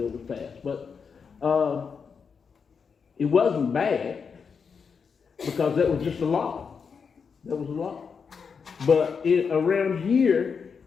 was passed. But it wasn't bad because that was just a law. That was a law. But around here,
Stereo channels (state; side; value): quieter; right; 5.9 dB